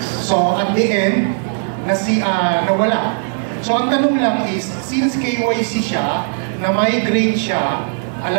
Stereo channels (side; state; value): left; silent; digital silence